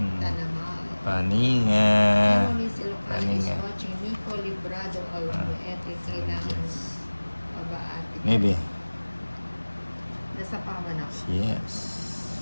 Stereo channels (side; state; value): both; inverted; correlation -1.00